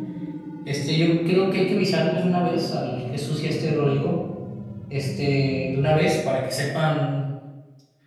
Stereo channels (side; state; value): both; identical; correlation 1.00